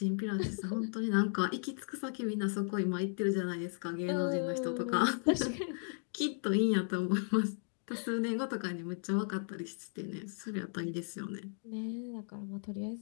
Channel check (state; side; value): silent; right; 54 dB below the other